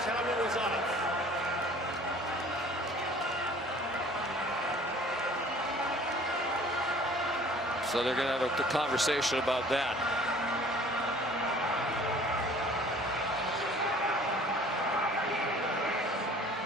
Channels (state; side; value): normal; both; correlation 0.50